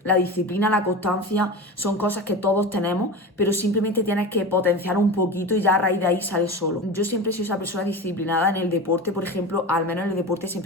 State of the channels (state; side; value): normal; both; correlation 0.27